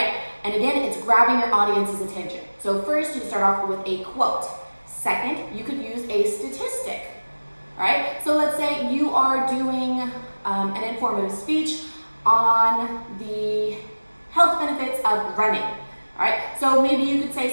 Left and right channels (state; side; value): inverted; both; correlation -1.00